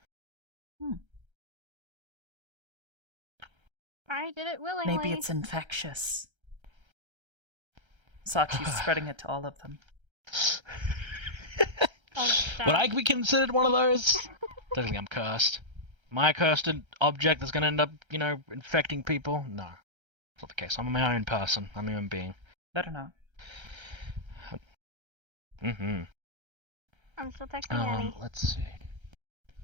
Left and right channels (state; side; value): late; left; 1.3 ms